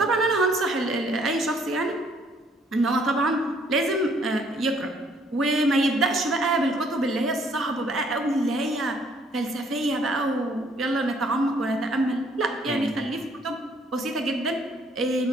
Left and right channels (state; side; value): normal; both; correlation 0.64